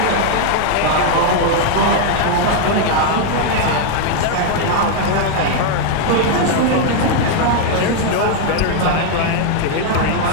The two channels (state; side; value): different; both; correlation 0.00